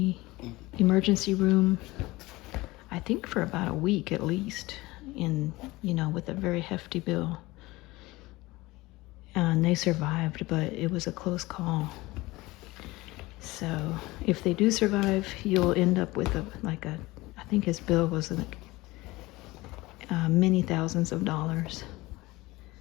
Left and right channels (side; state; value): right; quieter; 20.4 dB